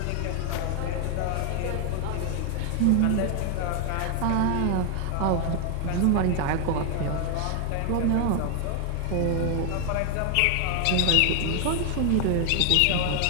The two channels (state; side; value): different; both; correlation 0.00